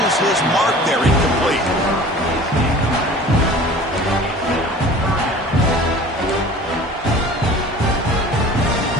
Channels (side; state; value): both; normal; correlation 0.43